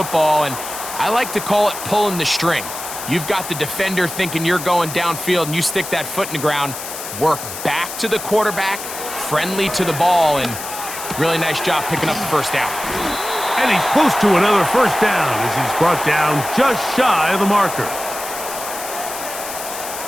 and I like to call it pulling the string. You've got the defender thinking you're going downfield, and you stick that foot in the ground, work back to the quarterback, friendly to the ball, and really nice job picking up the first down. And he's close to another first down as he's brought down just shy of the marker.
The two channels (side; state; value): left; noise; hiss, 9 dB below the sound